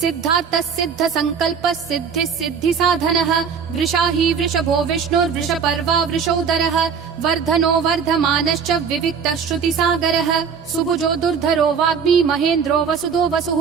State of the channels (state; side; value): quieter; left; 6.4 dB